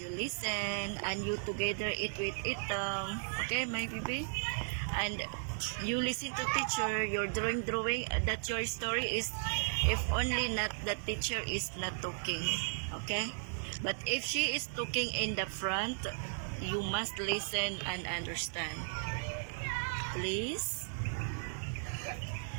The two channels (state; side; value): silent; left; digital silence